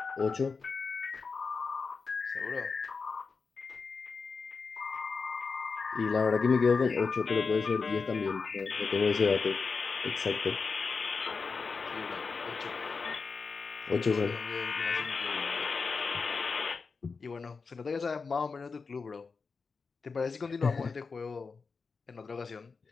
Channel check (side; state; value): right; quieter; 4.7 dB